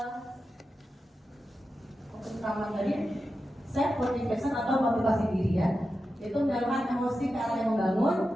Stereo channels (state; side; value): normal; both; correlation 0.91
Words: utama tadi self motivation atau motivasi diri ya, yaitu mendalurkan emosi ke arah yang membangun,